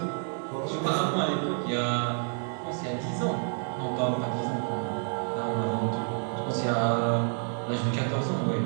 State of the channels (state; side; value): silent; left; 56 dB below the other